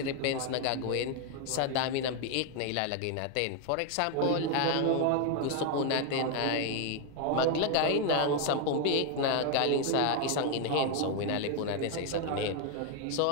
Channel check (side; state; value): both; different; correlation 0.01